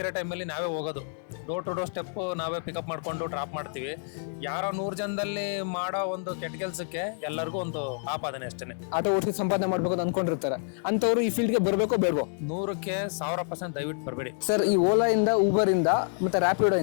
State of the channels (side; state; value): right; silent; digital silence